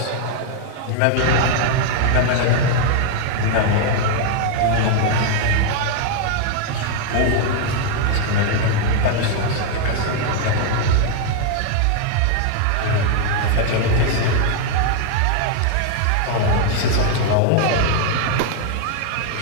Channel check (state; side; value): different; both; correlation 0.00